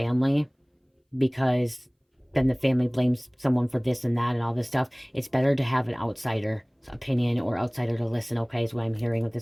because then the family blames someone for this and that and all this stuff. It's better to have an outsider opinion or outsider to listen, okay, is what I'm hearing with the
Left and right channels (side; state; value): both; identical; correlation 1.00